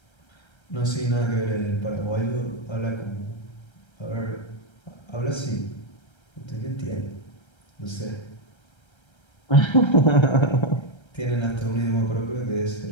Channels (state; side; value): late; right; 1.3 ms